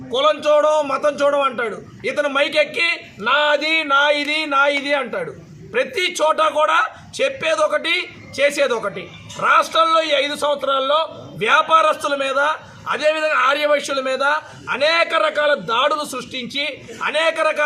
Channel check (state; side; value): identical; both; correlation 1.00